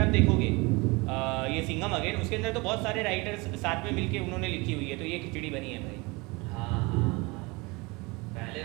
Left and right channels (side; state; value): left; quieter; 25.7 dB